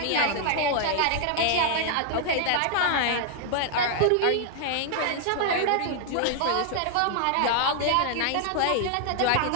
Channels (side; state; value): both; different; correlation 0.00